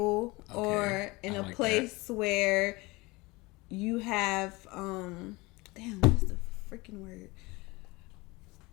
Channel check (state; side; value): quieter; right; 23.2 dB